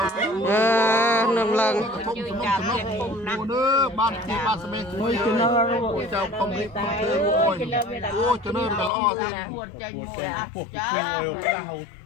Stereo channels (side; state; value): right; drops out; at 8.9 s